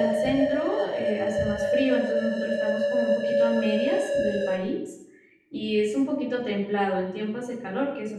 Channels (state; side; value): identical; both; correlation 1.00